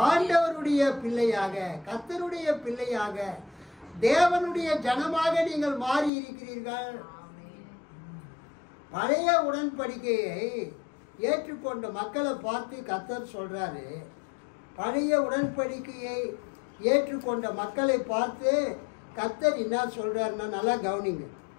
ஆண்டவருடைய பிள்ளையாக, கர்த்தருடைய பிள்ளையாக, தேவனுடைய ஜனமாக நீங்கள் மாறி இருக்கிறீர்கள். பழைய உடன்படிக்கையை ஏற்றுக்கொண்ட மக்களை பார்த்து கர்த்தர் சொல்றாரு, பழைய உடன்படிக்கையை ஏற்றுக்கொண்ட மக்களை பார்த்து கர்த்தர் என்ன சொல்றாருன்னா, நல்லா கவனிங்க.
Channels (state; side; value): drops out; right; at 6.1 s